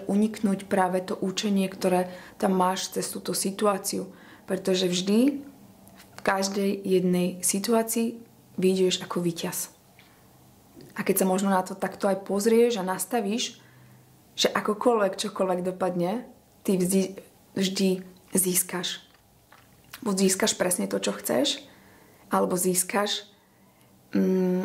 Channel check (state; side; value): identical; both; correlation 1.00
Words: uniknúť práve to učenie, ktoré tam máš cez túto situáciu. Pretože vždy v každej jednej situácii vyjdeš ako víťaz. A keď sa možno na to takto aj pozrieš a nastavíš, že čokoľvek dopadne, ty vždy získaš. Buď získaš presne to, čo chceš, alebo získaš